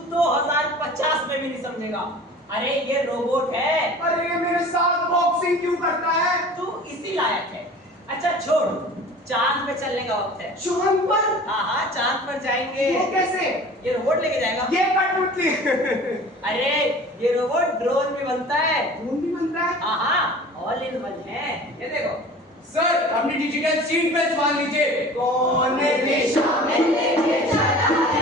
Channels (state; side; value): normal; both; correlation 0.42